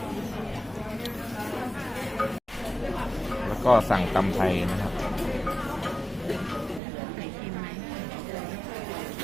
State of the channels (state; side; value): drops out; left; at 6.8 s